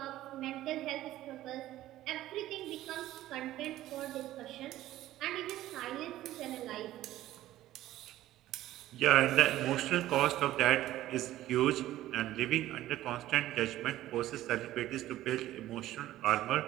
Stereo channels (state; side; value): quieter; left; 14.5 dB